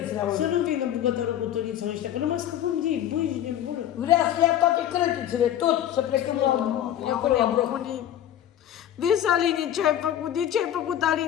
Să nu vină bucătărul cu Duniță ăștia, că nu mai scăpăm de ei, băi, de bună. Vrea să ia toate crătițele, tot, să plecăm acolo la bloc. Vezi, Aline, ce ai făcut? De ce ai făcut,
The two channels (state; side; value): quieter; right; 11.1 dB